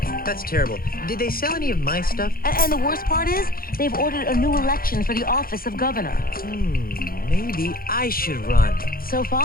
That's terrible. Did they sell any of my stuff? And the worst part is, they've ordered a new election for the office of governor. Maybe I should run. So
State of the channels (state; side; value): late; right; 0.42 ms